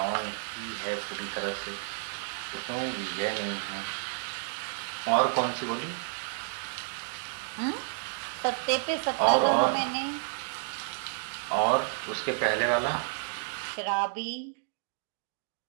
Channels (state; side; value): silent; left; digital silence